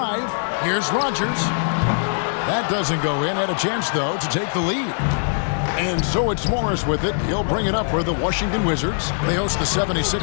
Here's Rogers. That doesn't go in. Had a chance, though, to take the lead. And so it's Morris with it. He'll bring it up for the Washington Wizards. They host the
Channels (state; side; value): silent; right; digital silence